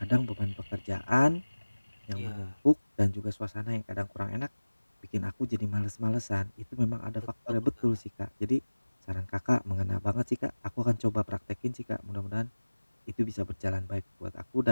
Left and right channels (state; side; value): inverted; both; correlation -1.00